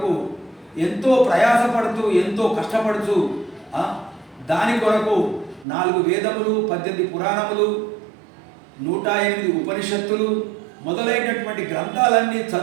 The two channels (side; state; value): left; drops out; at 5.7 s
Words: ఎంతో ప్రయాసపడుతూ, ఎంతో కష్టపడుతూ దాని కొరకు 4 వేదములు, 18 పురాణములు, 108 ఉపనిషత్తులు మొదలైనటువంటి గ్రంథాలన్నీ